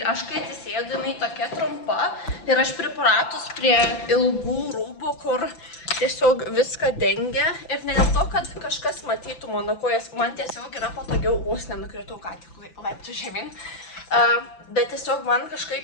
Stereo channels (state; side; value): late; right; 5.9 ms